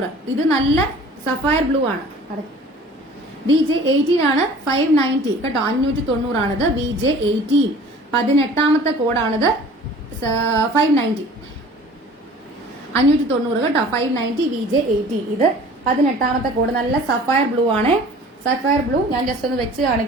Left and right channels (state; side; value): normal; both; correlation 0.47